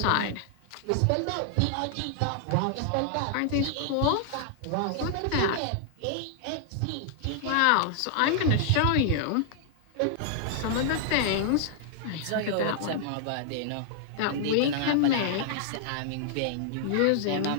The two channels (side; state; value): both; different; correlation -0.01